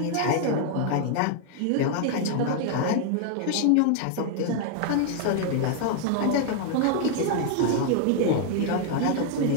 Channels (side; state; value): both; different; correlation 0.00